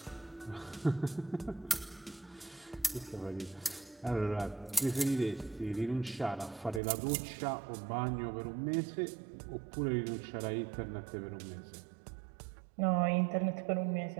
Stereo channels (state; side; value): drops out; left; at 6.8 s